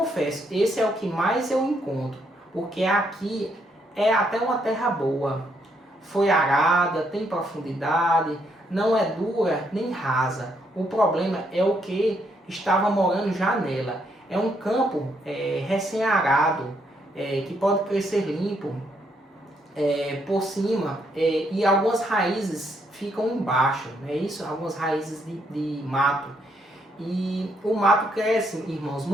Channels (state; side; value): normal; both; correlation 0.74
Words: esse é o que mais eu encontro. porque aqui é até uma terra boa. Foi arada, tem profundidade, não é dura nem rasa. O problema é o que estava morando já nela. É um campo recém-arado, que pode crescer limpo por cima, e algumas raízes ficam embaixo, não é isso? Algumas raízes de mato. E o mato cresce, irmãos,